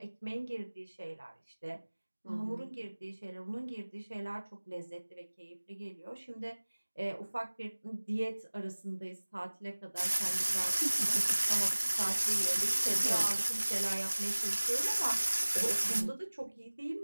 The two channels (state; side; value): inverted; both; correlation -1.00